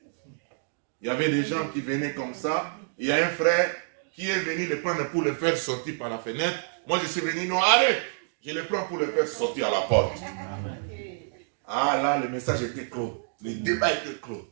Il y avait des gens qui venaient comme ça. Il y a un frère qui est venu le prendre pour le faire sortir par la fenêtre. Moi, je suis venu, non, arrête. Je le prends pour le faire sortir à la porte. Ah là, le message était clos. Le débat était clos.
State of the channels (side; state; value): left; silent; digital silence